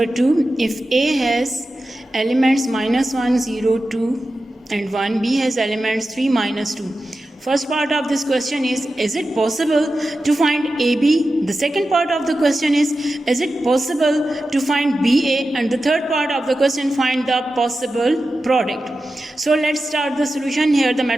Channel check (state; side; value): normal; both; correlation 0.92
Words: 2. If A has elements -1, 0, 2 and 1, B has elements 3, -2. First part of this question is it possible to find AB? The second part of the question is it possible to find BA? And the third part of the question, find the possible product. So let's start the solution. Here the